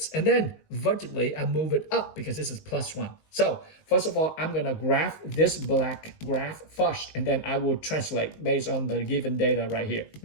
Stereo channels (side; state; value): right; late; 19 ms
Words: and then vertically I move it up because this is plus 1. So first of all, I'm gonna graph this black graph first, and then I will translate based on the given data right here.